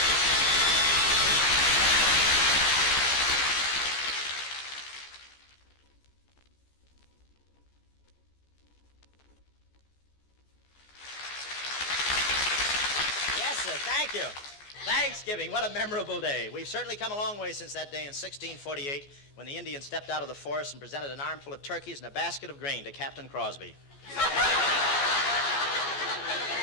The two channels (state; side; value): late; right; 14 ms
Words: Yes, sir, thank you. Thanksgiving, what a memorable day. We've certainly come a long way since that day in 1648 when the Indians stepped out of the forest and presented an armful of turkeys and a basket of grain to Captain Crosby. What